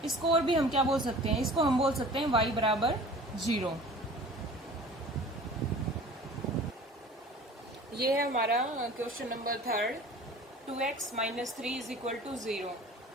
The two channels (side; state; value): both; normal; correlation 0.44